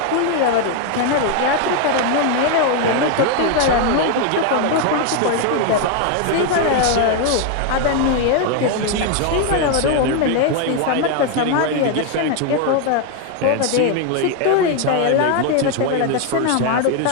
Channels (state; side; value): different; both; correlation 0.01